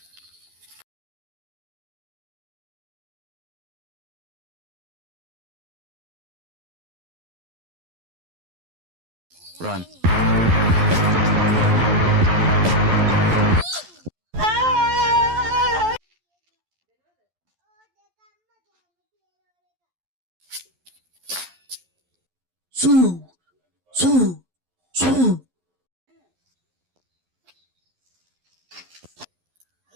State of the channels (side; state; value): left; late; 11 ms